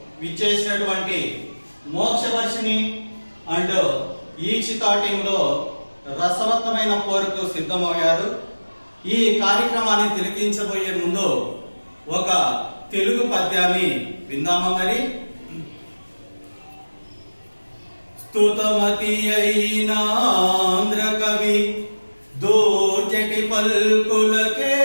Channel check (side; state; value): both; inverted; correlation -1.00